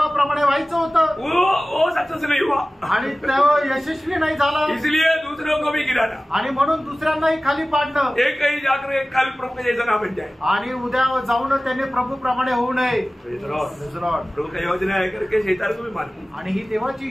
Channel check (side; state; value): both; normal; correlation 0.97